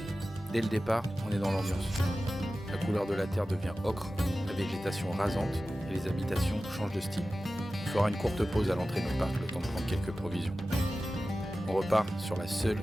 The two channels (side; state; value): both; normal; correlation 0.95